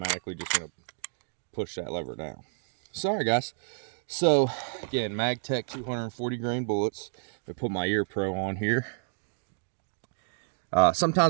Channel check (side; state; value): left; silent; digital silence